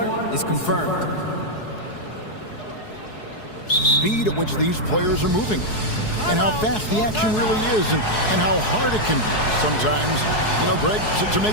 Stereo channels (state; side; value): late; right; 4.7 ms